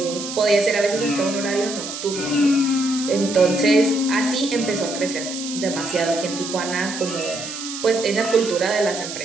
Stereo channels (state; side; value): noise; right; hiss, 8 dB below the sound